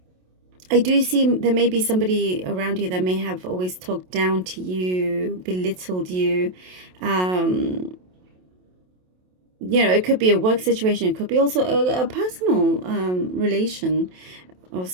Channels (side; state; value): left; late; 27 ms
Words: I do see there may be somebody around you that may have always talked down to you, belittled you. It could be a work situation. It could be also a personal relation of